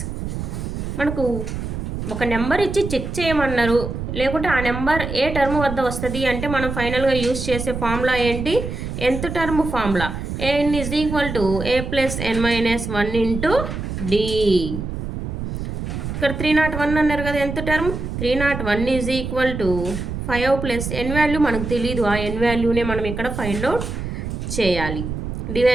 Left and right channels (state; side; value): noise; right; rumble, 5 dB below the sound